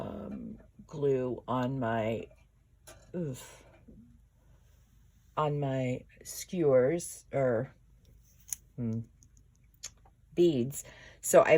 glue on my skewers or beads. So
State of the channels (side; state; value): both; identical; correlation 1.00